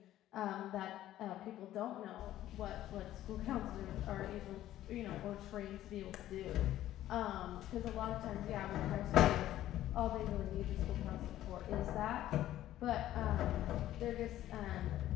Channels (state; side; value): quieter; right; 13.4 dB